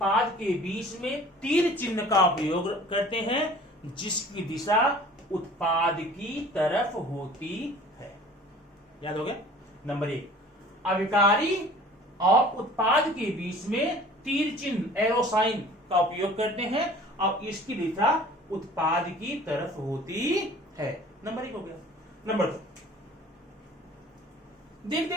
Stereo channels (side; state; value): both; normal; correlation 0.47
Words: के बीच में तीर चिन्ह का उपयोग करते हैं, जिसकी दिशा उत्पाद की तरफ होती है। याद हो गया? नंबर 1, अभिकारी और उत्पाद के बीच में तीर चिन्ह, एरो साइन का उपयोग करते हैं, और इसकी दिशा उत्पाद की तरफ होती है। नंबर 1 हो गया। नंबर 2, देख